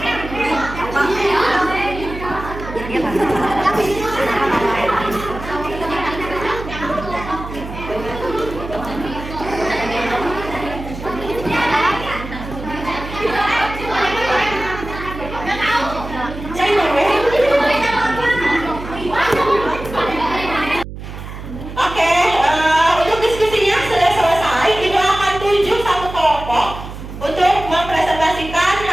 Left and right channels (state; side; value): noise; right; hum, 11 dB below the sound